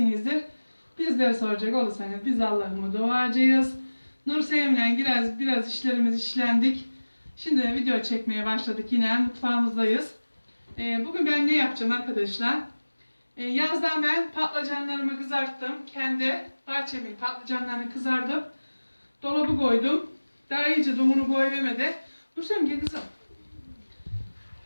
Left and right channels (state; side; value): inverted; both; correlation -1.00